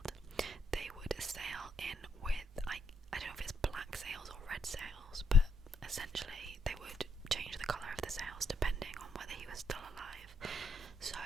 they would sail in with, I don't know if it's black sails or red sails, but essentially they would change the colour of the sails depending on whether he was still alive. So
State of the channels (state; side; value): normal; both; correlation 0.75